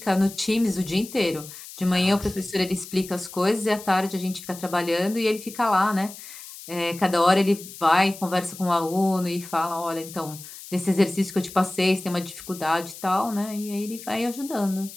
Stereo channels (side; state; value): left; noise; hiss, 15 dB below the sound